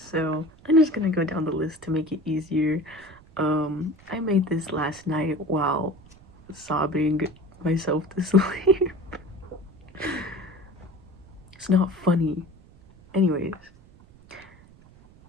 I'm just gonna go down the list to make it easier. I made this last night while sobbing myself to sleep. It's not funny. Anyways,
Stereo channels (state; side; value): noise; right; rumble, 24 dB below the sound